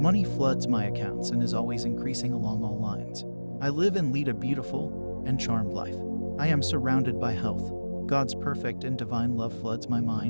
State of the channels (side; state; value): both; inverted; correlation -1.00